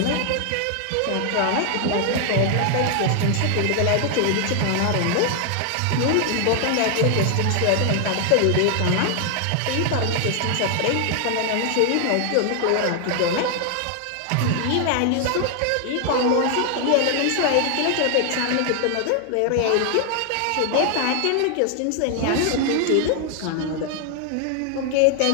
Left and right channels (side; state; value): both; different; correlation 0.00